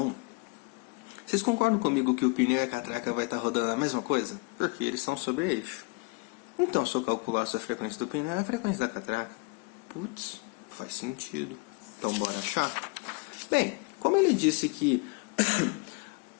vocês concordam comigo que o pneu e a catraca vai estar rodando a mesma coisa? Porque eles são sobre eixo. Então, se eu calculasse a frequência do pneu, é a frequência da catraca. Putz, faz sentido. Então, bora achar? Bem, como ele disse que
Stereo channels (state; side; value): quieter; right; 30.5 dB